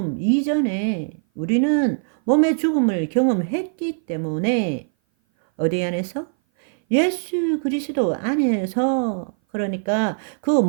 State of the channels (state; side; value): silent; left; 58 dB below the other